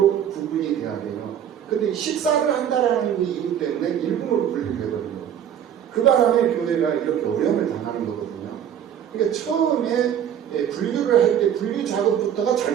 구분이 돼야 돼요. 근데 식사를 한다라는 그 이유 때문에 1군으로 분류를 해버린 거예요. 그 바람에 교회가 이렇게 어려움을 당하는 거거든요. 그러니까 처음에 분류를 할 때 분류 작업부터가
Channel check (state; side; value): quieter; left; 9.4 dB